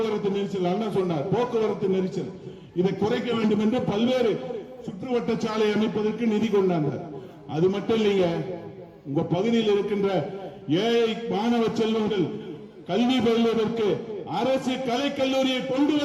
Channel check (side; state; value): both; identical; correlation 1.00